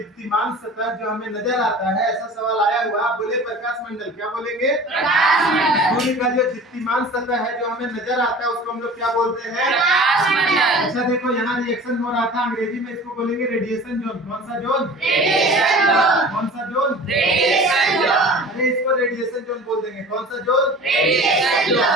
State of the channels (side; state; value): both; normal; correlation 0.41